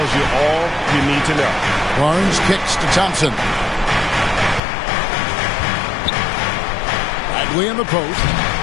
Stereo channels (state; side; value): drops out; right; at 4.6 s